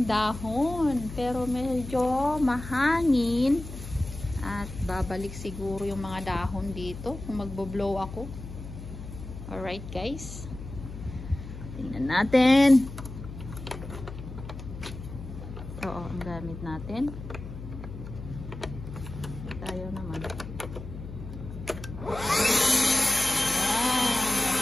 dahon. Pero medyo mahangin. At babalik siguro yung mga dahon dito kung magbo-blow ako. Alright guys. Tingnan natin. Ito ang gamit natin. Tayo naman.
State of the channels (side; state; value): left; noise; hum, 11 dB below the sound